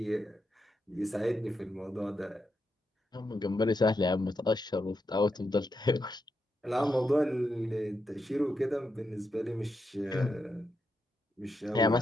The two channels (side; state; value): both; normal; correlation 0.84